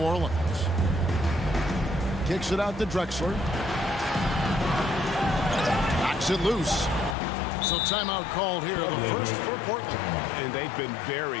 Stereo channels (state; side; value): drops out; right; at 7.2 s